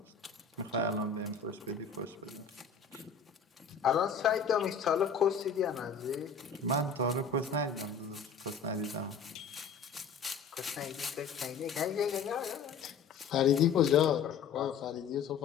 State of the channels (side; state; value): right; quieter; 5.7 dB